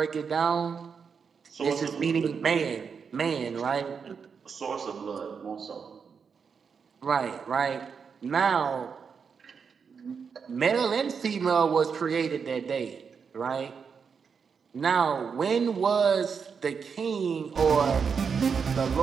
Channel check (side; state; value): left; quieter; 6.1 dB